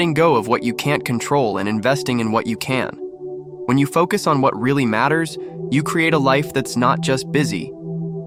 go of what you can't control and investing in what you can. When you focus on what really matters, you create a life that's not just busy,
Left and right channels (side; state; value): both; identical; correlation 1.00